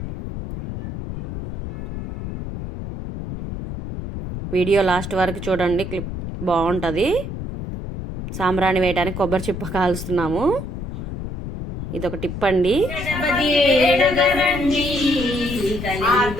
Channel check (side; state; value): left; noise; rumble, 7 dB below the sound